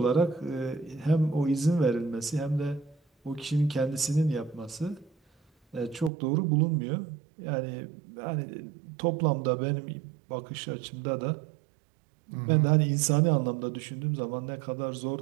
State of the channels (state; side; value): drops out; left; at 6.1 s